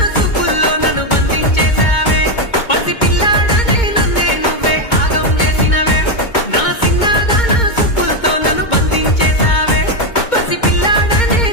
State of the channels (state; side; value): late; right; 2.2 ms